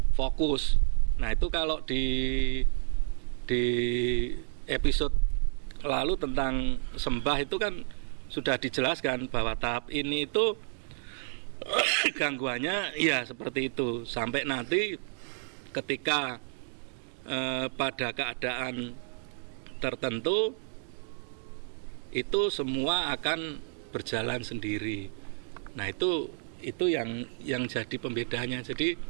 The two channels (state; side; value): silent; left; digital silence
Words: fokus. Nah, itu kalau di episode lalu tentang sembah itu kan sudah dijelaskan bahwa tahap ini itu gangguannya ya seperti itu, sampai nanti ketika pada keadaan tertentu itu semua akan berjalan sendiri. Nah, itu yang jadi pembedanya.